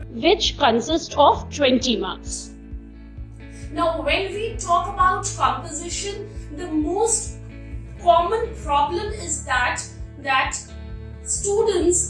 which consists of 20 marks. Now when we talk about composition, the most common problem is that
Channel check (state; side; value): identical; both; correlation 1.00